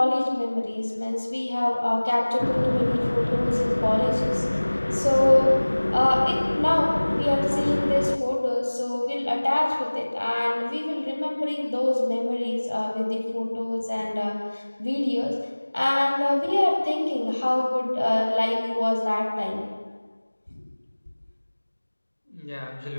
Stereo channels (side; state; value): both; inverted; correlation -1.00